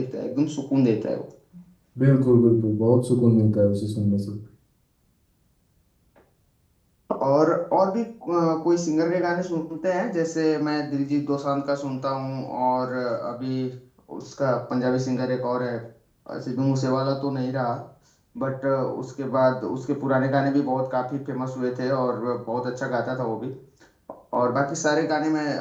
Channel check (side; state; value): both; identical; correlation 1.00